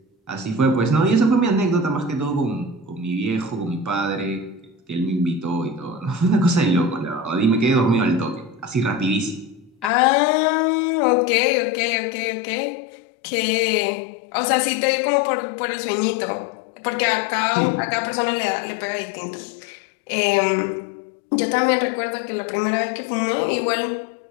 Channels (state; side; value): drops out; right; at 9.9 s